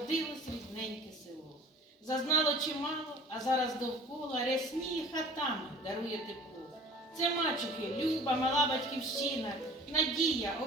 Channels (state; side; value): normal; both; correlation 0.45